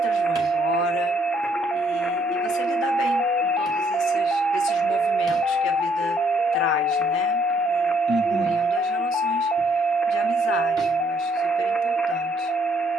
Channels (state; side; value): normal; both; correlation 0.67